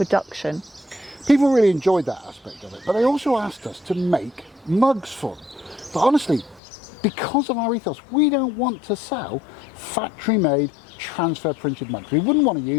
People really enjoyed that aspect of it, but they also asked us to make mugs for them. But honestly, because of our ethos, we don't want to sell factory-made, transfer printed mugs. We wouldn't want to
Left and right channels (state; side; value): drops out; right; at 6.6 s